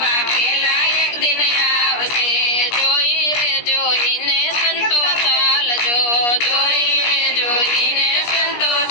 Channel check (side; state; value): right; late; 17 ms